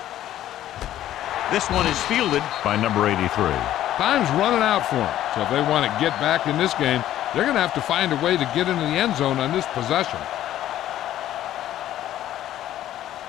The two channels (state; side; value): quieter; right; 12.6 dB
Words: This one is fielded by number 83. Time's running out for them. So if they want to get back in this game, they're going to have to find a way to get into the end zone on this possession.